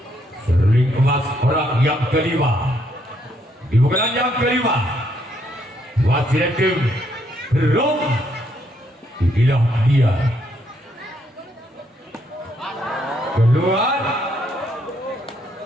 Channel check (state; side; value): normal; both; correlation 0.73